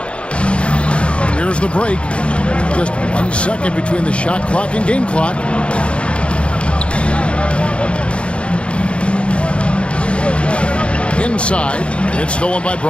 Here's the break. Just 1 second between the shot clock and game clock. Inside, it's stolen by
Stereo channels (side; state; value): right; late; 0.059 ms